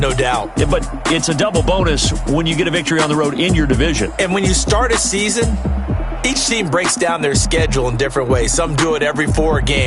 doubt. But it's a double bonus when you get a victory on the road in your division. And when you start a season, each team breaks down their schedule in different ways. Some do it every 4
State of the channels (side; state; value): both; identical; correlation 1.00